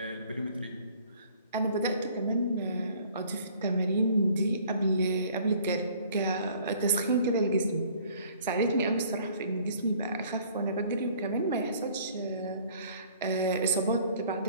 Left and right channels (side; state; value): both; inverted; correlation -0.55